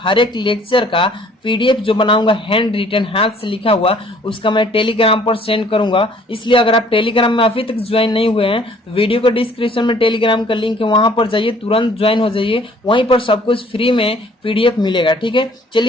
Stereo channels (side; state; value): both; normal; correlation 0.57